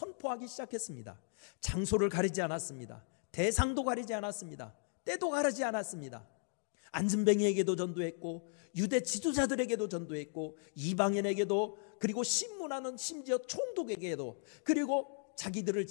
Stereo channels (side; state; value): right; silent; 53 dB below the other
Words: 시작했습니다. 장소를 가리지 않았습니다. 대상도 가리지 않았습니다. 때도 가리지 않았습니다. 안진뱅이에게도 전도했고 유대 지도자들에게도 전도했고 이방인에게도, 그리고 심문하는 심지어 총독에게도, 그리고 자기들을